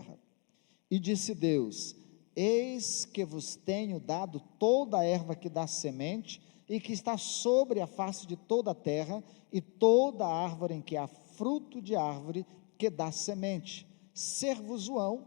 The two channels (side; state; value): right; quieter; 35.2 dB